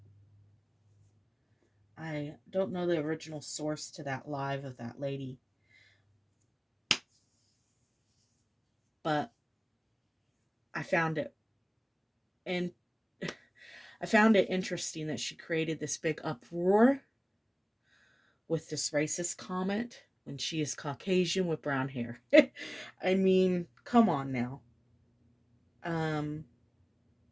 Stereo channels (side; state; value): both; identical; correlation 1.00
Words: I don't know the original source to that live of that lady, but I found it and I found it interesting that she created this big uproar with this racist comment when she is Caucasian with brown hair. I mean, come on now. Um,